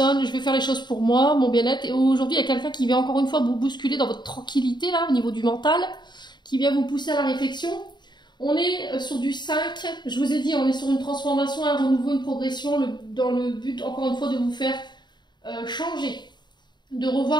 je vais faire les choses pour moi, mon bien-être. Et aujourd'hui, il y a quelqu'un qui vient encore une fois vous bousculer dans votre tranquillité, là, au niveau du mental, qui vient vous pousser à la réflexion. On est sur du 5, je vous ai dit, on est sur une transformation, un renouveau, une progression, dans le but, encore une fois, de vous faire changer, de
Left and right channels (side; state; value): right; late; 0.21 ms